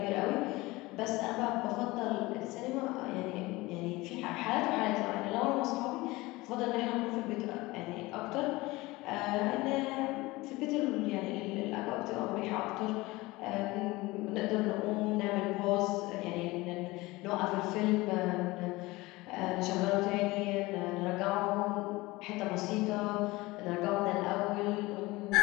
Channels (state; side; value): quieter; right; 21.0 dB